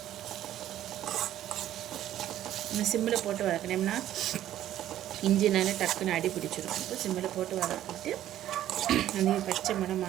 இன்னும் சிம்மில் போட்டு வதக்கினோம்னா இஞ்சினால டக்குன்னு அடி பிடிச்சிடும். இப்போ சிம்மில் போட்டு வதக்கிட்டு அந்த பச்சை மணம்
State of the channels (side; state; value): left; quieter; 12.5 dB